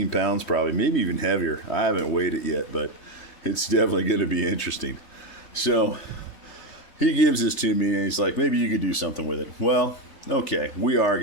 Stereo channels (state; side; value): late; right; 3.3 ms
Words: pounds probably, maybe even heavier. I haven't weighed it yet, but it's definitely going to be interesting. So he gives this to me and he's like, maybe you could do something with it. Well, okay, we are